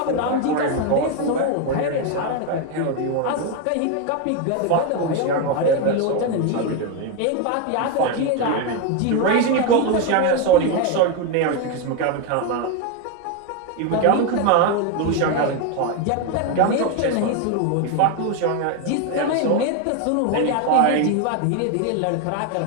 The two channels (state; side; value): different; both; correlation 0.02